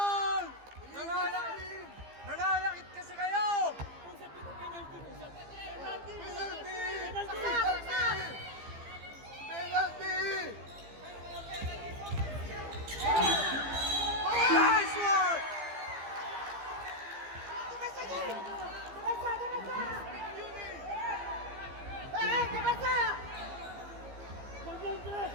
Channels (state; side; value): late; left; 15 ms